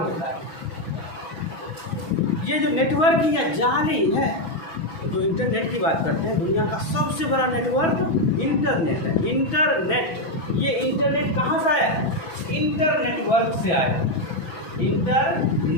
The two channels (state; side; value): late; right; 6.2 ms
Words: है। ये जो नेटवर्क है जाल ही है। जो इंटरनेट की बात करते हैं, दुनिया का सबसे बड़ा नेटवर्क इंटरनेट है। इंटरनेट, ये इंटरनेट कहाँ से आया है, इंटरनेटवर्क से आया है,